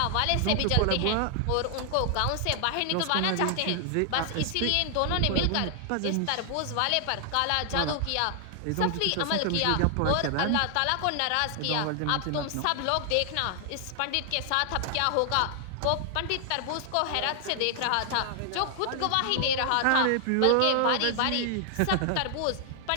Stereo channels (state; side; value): different; both; correlation 0.00